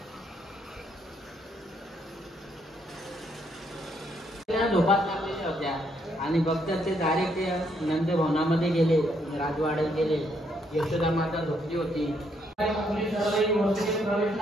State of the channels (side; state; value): both; normal; correlation 0.73